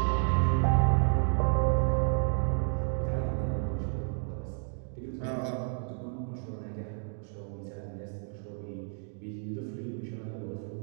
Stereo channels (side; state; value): left; silent; 57 dB below the other